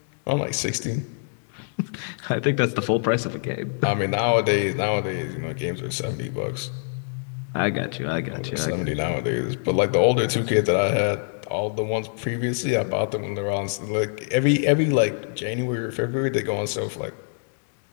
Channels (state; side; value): silent; right; digital silence